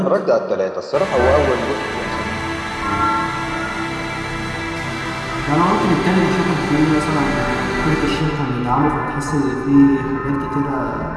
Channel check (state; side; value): identical; both; correlation 1.00